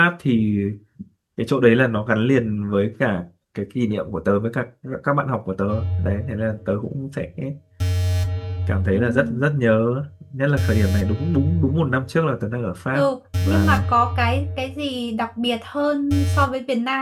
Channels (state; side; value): identical; both; correlation 1.00